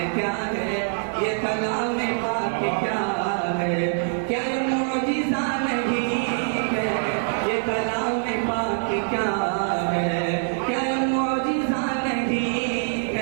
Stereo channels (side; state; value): left; silent; digital silence